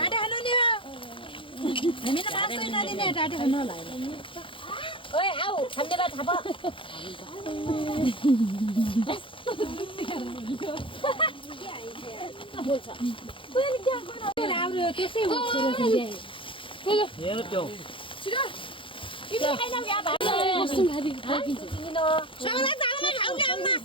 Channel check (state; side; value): late; right; 0.25 ms